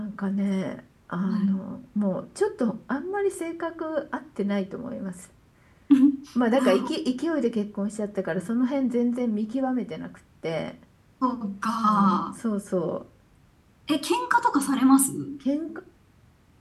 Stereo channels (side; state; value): both; identical; correlation 1.00